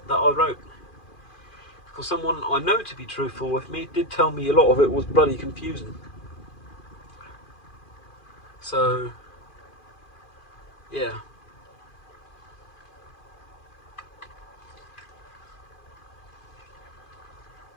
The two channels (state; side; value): late; right; 2.4 ms